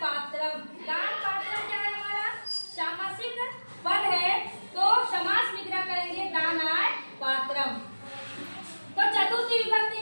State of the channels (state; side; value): inverted; both; correlation -1.00